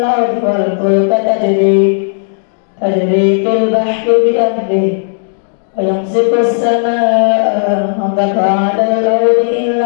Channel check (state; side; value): silent; right; digital silence